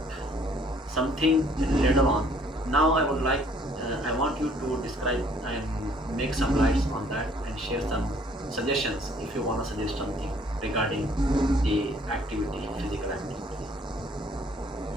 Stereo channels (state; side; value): normal; both; correlation 0.60